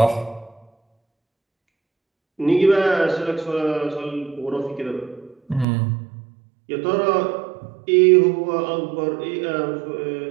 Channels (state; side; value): drops out; left; at 5.7 s